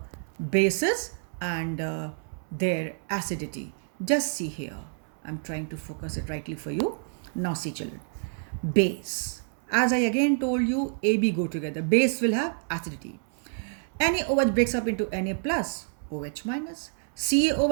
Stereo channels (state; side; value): silent; left; 59 dB below the other